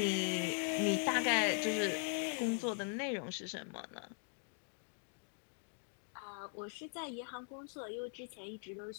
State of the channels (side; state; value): right; silent; 51 dB below the other